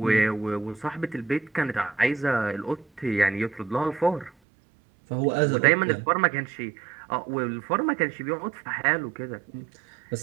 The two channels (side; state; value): left; drops out; at 4.3 s